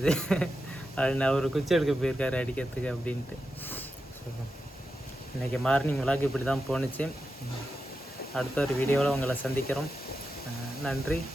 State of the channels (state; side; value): normal; both; correlation 0.89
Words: அப்படின்னு. அவர் குச்சி எடுக்க போயிருக்காரு அடிக்கிறதுக்கு அப்படின்ட்டு. இன்றைக்கி மார்னிங் விளாக் இப்படி தான் போணுச்சு. அடுத்த ஒரு வீடியோவில் உங்களை சந்திக்கிறோம். நன்றி,